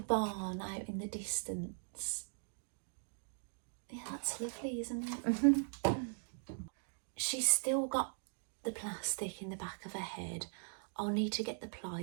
out in the distance. Yeah, that's lovely, isn't it? She's still got the plastic in the back of her head. I'll need to get the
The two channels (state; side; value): silent; left; digital silence